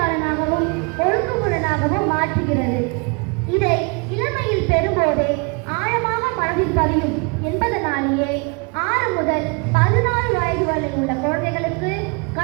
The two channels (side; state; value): left; quieter; 31.3 dB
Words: ஒழுங்குமுறையாகவும் மாற்றுகிறது. இதை இளமையில் பெறும்போதே ஆழமாக மனதில் பதியும் என்பதனாலேயே 6 முதல் 14 வயது வரை உள்ள குழந்தைகளுக்கு